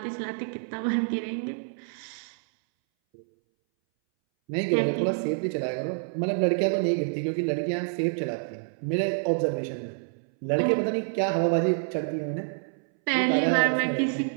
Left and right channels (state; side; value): silent; left; 60 dB below the other